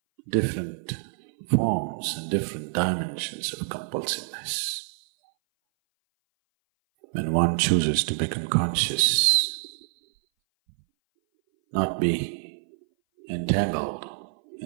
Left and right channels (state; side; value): silent; left; 58 dB below the other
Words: different forms and different dimensions of compulsiveness. When one chooses to become conscious, not be entangled